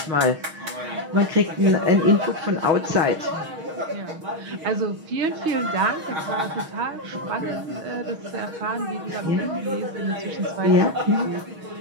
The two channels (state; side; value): late; left; 6.4 ms